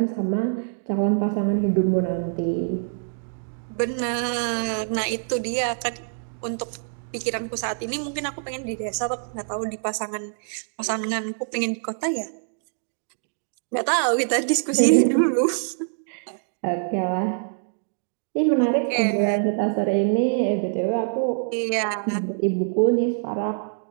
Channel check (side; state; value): left; silent; digital silence